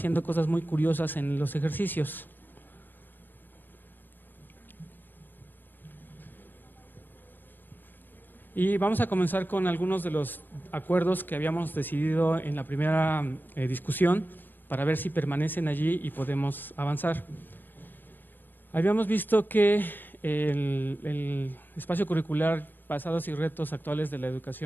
cosas muy curiosas en los ejercicios. Y vamos a comenzar con algunos de los acuerdos que habíamos decidido en la primera discusión para ver si permanecen allí y podemos avanzar. Habíamos visto que el espacio curricular Pasados y retos actuales de la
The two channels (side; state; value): right; late; 0.092 ms